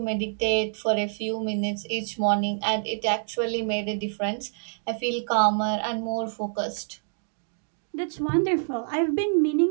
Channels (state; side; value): silent; left; digital silence